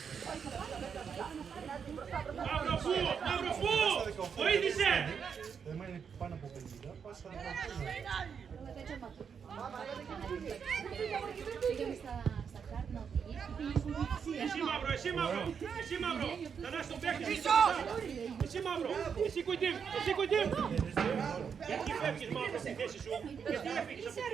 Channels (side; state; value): left; quieter; 6.8 dB